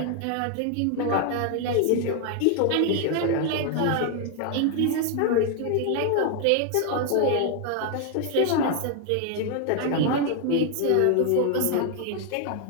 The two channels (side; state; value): both; different; correlation 0.00